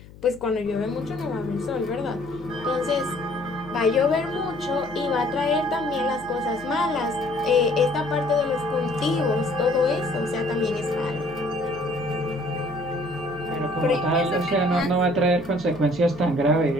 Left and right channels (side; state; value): left; noise; hum, 20 dB below the sound